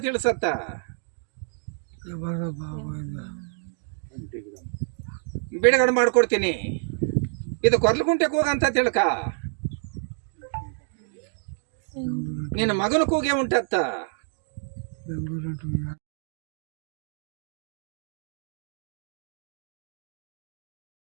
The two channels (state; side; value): silent; left; digital silence